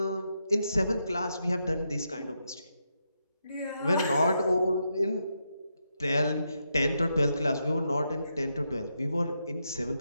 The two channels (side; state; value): both; inverted; correlation -0.83